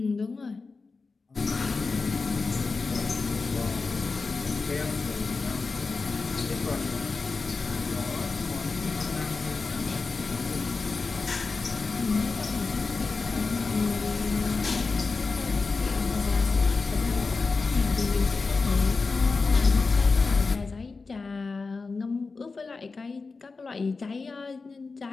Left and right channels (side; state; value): right; quieter; 4.2 dB